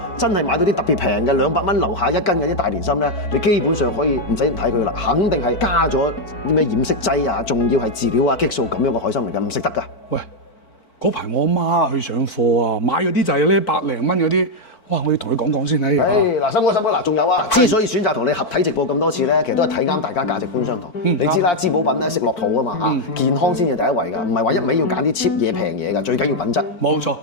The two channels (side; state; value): right; late; 4.5 ms